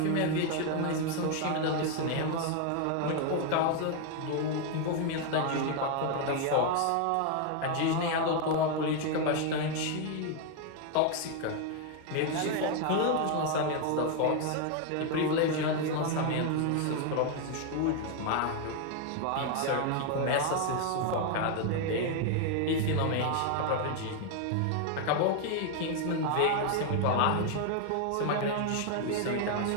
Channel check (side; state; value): both; different; correlation 0.01